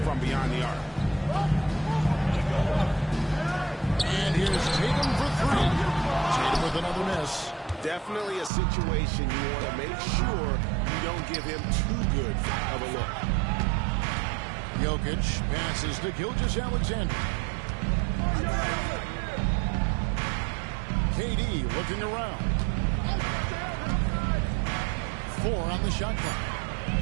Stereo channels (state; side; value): drops out; left; at 8.5 s